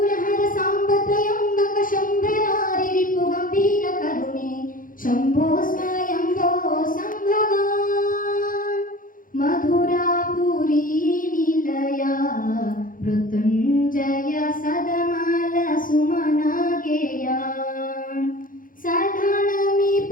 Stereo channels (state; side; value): late; right; 0.40 ms